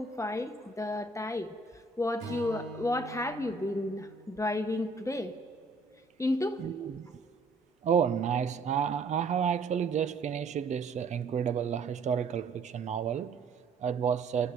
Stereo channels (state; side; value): quieter; left; 3.7 dB